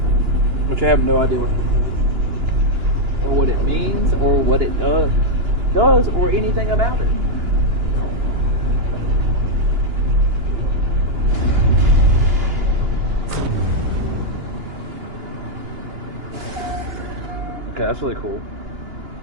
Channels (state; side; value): late; left; 2.9 ms